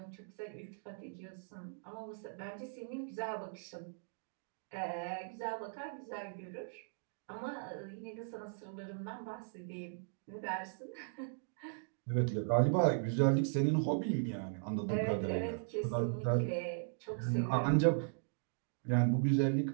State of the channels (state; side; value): silent; left; digital silence